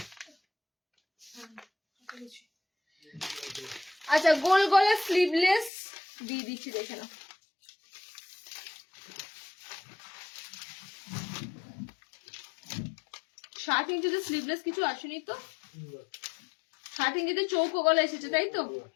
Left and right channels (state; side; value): drops out; right; at 5.7 s